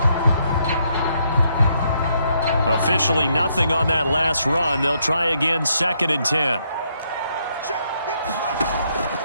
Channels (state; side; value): inverted; both; correlation -0.74